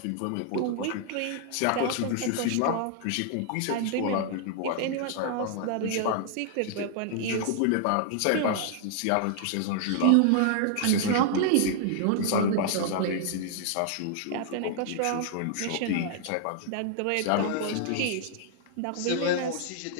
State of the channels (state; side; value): different; both; correlation 0.00